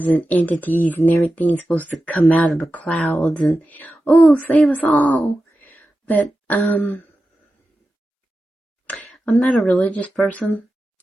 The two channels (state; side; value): normal; both; correlation 0.93